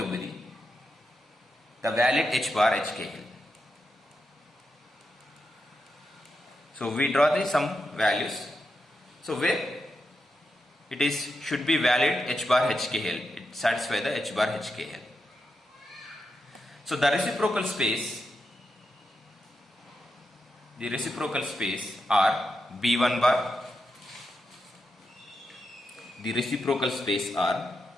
be the valid H bar HKL. So we draw the some values. So where it is should be valid H bar HKL, it satisfies the H bar HKL. So the reciprocal space are B1 bar. The reciprocal space are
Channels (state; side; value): normal; both; correlation 0.86